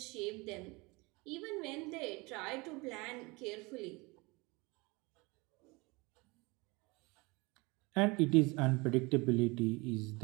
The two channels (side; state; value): left; quieter; 25.5 dB